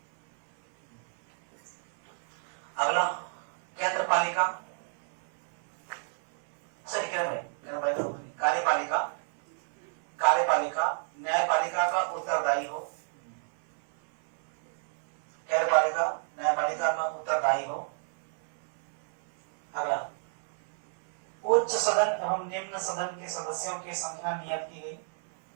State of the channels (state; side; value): silent; left; 59 dB below the other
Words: अगला, केंद्र पालिका, सही कह रहे हैं, कार्यपालिका, कार्यपालिका न्यायपालिका का उत्तरदायी हो, कार्यपालिका न्यायपालिका का उत्तरदायी हो। अगला, उच्च सदन एवं निम्न सदन के सदस्यों की संख्या नियत की गई,